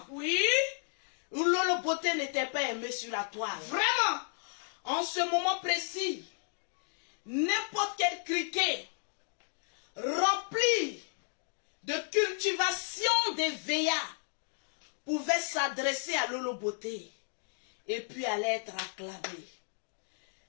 Oui. où Lolo Beauté n'était pas aimé sur la toile. Vraiment. En ce moment précis, n'importe quel criquet rempli de cultivation des VA pouvait s'adresser à Lolo Beauté et puis allait être acclamé.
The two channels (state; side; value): silent; right; 56 dB below the other